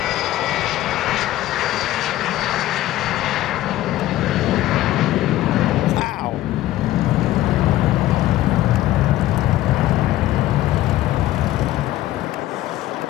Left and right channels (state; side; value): quieter; right; 14.8 dB